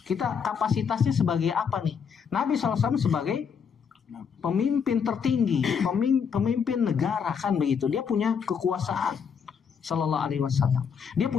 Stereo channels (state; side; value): quieter; right; 6.8 dB